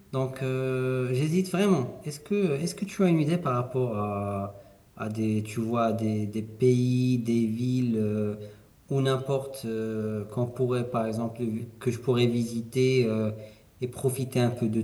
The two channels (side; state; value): both; identical; correlation 1.00